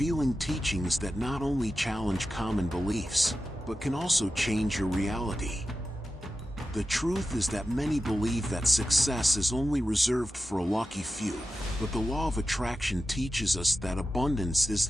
teachings that not only challenge common beliefs, but can also change your reality. The truth is that many believe that success is only reserved for a lucky few, but the law of attraction teaches us that abundance is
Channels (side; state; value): both; normal; correlation 0.92